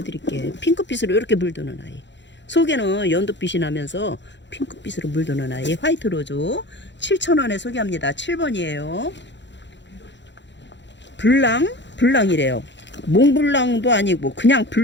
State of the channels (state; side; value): late; right; 0.52 ms